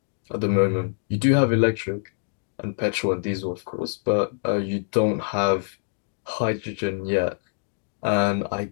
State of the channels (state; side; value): silent; right; digital silence